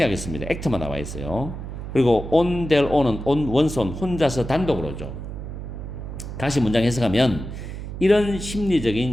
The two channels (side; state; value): right; noise; hum, 8 dB below the sound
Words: act만 나와 있어요. 그리고 on their own은 on 원손 혼자서 단독으로죠. 다시 문장 해석하면 이런